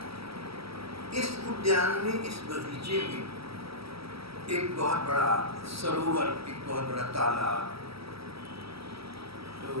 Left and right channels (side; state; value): left; late; 0.76 ms